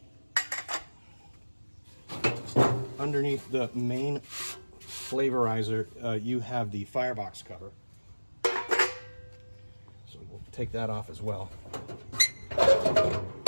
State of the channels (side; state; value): both; inverted; correlation -1.00